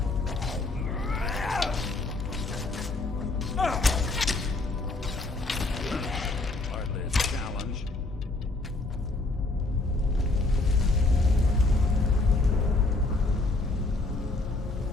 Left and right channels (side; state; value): right; quieter; 3.1 dB